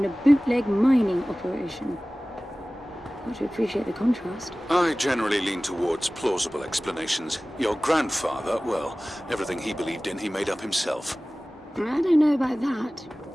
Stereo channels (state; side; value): normal; both; correlation 0.98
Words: a bootleg mining operation. Got to appreciate the contrast. I generally lean towards plausible explanations. Your grandfather, well, everything he believed in, he made up himself. I don't know about that.